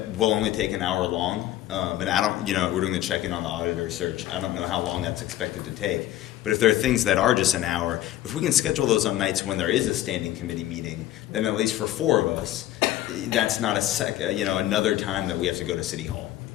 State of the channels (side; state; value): right; quieter; 13.7 dB